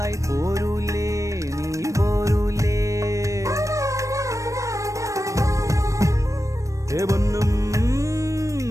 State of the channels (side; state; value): left; late; 0.15 ms